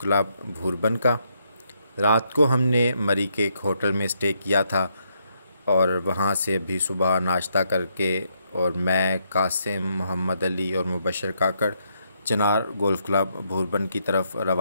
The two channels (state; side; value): inverted; both; correlation -0.76